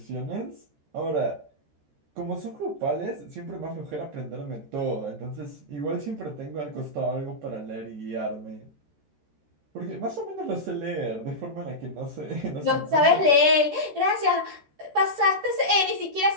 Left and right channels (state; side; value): late; left; 13 ms